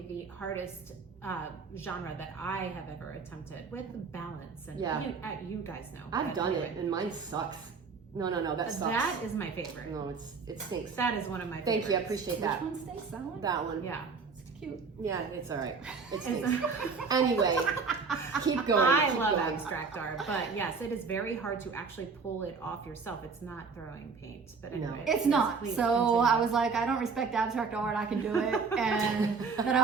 the hardest genre that I have ever attempted, with balance. And you guys know. I've but done anyway. it, and mine sucks. No, that sucks. That is my favorite. No, it stinks. That is one of my Thank favorites. you, I appreciate that. Which one stays? That one? That one. Yeah. It's cute. Yeah, it's all right. It stinks. Anyway, keep going. I keep love going. abstract art, but yes, it is very hard to actually pull it off yourself. It's not throwing paint, but anyway. It's not. please So continue. I was like, I don't respect abstract art. I can do it. And then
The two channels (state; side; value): quieter; left; 5.0 dB